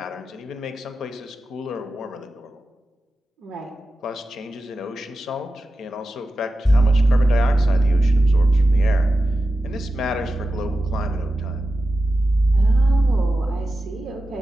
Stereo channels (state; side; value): normal; both; correlation 0.92